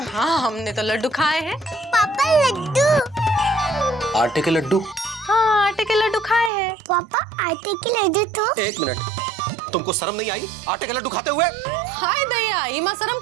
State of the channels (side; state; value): left; drops out; at 6.5 s